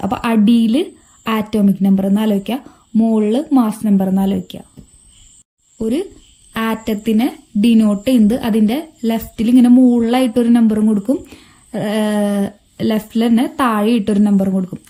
അപ്പൊ അടിയിൽ ആറ്റോമിക് നമ്പർ എന്ന് ആലോചിക്കുക, മുകളിൽ മാസ് നമ്പർ എന്ന് ആലോചിക്കുക. ഒരു ആറ്റത്തിനെ ഡിനോട്ട് ചെയ്യുന്നത് അതിന്റെ ലെഫ്റ്റിൽ ഇങ്ങനെ മുകളിലായിട്ടൊരു നമ്പറും കൊടുക്കും, ലെഫ്റ്റിൽ തന്നെ താഴെ ഇട്ടൊരു നമ്പർ കൊടുക്കും.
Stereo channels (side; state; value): both; identical; correlation 1.00